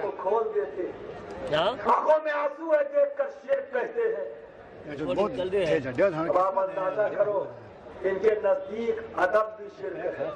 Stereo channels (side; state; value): both; identical; correlation 1.00